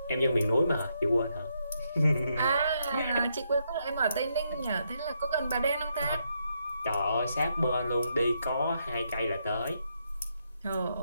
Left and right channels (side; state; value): both; inverted; correlation -0.79